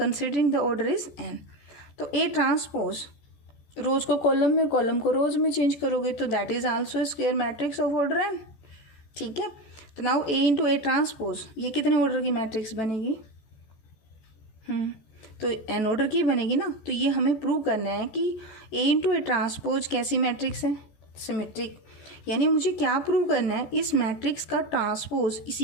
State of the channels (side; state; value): right; late; 14 ms